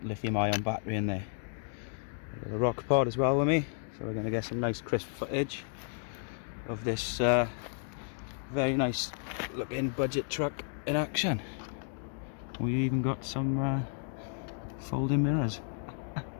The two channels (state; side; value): silent; right; 56 dB below the other